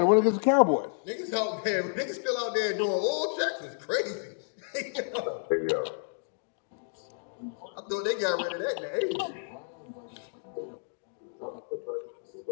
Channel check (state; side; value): silent; right; digital silence